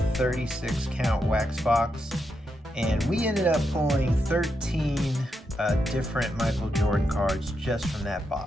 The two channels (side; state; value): both; normal; correlation 0.84